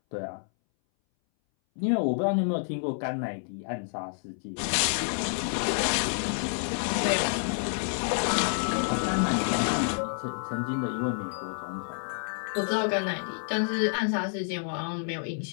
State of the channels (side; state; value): right; silent; 59 dB below the other